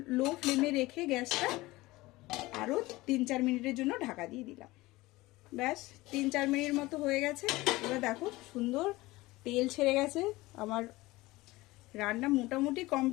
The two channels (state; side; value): quieter; right; 19.8 dB